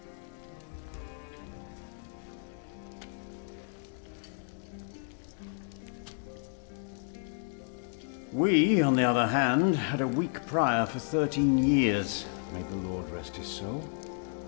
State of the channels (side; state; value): right; silent; digital silence